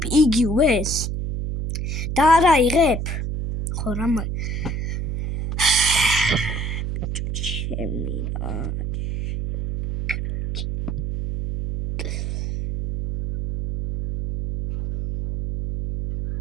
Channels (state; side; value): noise; right; hum, 3 dB below the sound